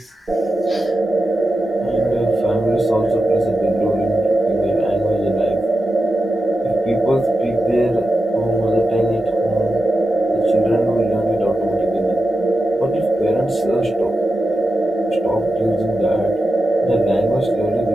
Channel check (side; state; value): both; normal; correlation 0.91